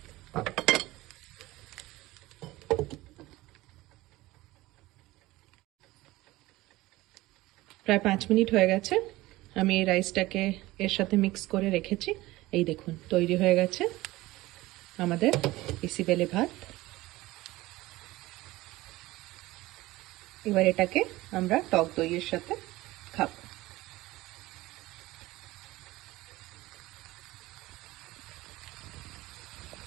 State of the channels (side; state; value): left; quieter; 18.7 dB